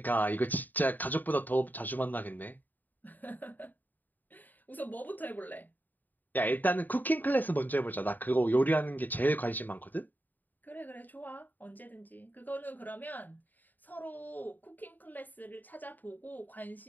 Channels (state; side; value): late; right; 0.087 ms